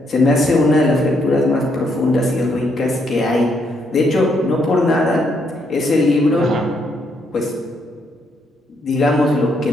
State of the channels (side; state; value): both; normal; correlation 0.75